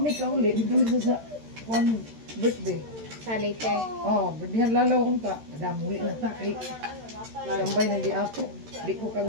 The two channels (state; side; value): late; left; 13 ms